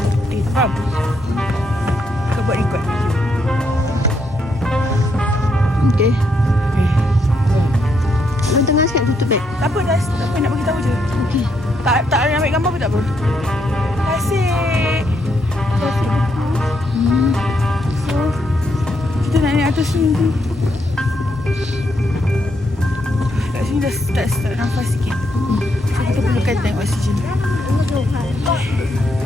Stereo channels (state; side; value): normal; both; correlation 0.77